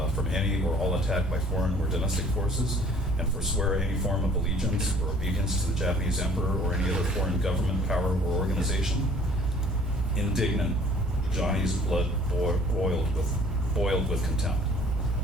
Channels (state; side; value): normal; both; correlation 0.54